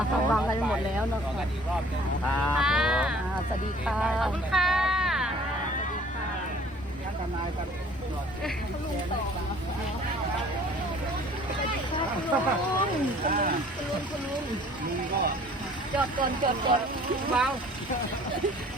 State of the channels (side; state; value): both; normal; correlation 0.52